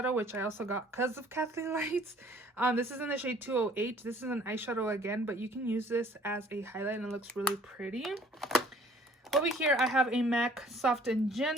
which I also got because of Kathleen Lights. This is in the shade 208. This is an eyeshadow again, but you can use this as a highlight and it looks really pretty. Over here, I have a MAC Soft and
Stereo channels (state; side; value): normal; both; correlation 0.56